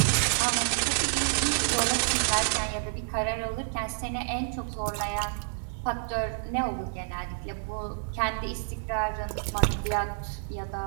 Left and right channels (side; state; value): left; silent; digital silence